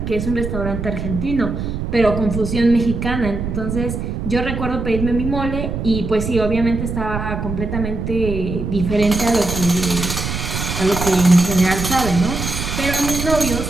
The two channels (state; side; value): noise; right; rumble, 4 dB below the sound